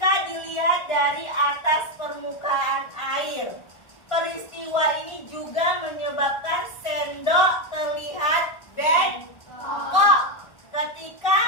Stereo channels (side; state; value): right; late; 1.4 ms